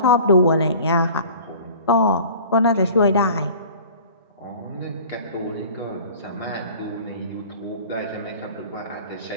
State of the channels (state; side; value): inverted; both; correlation -0.44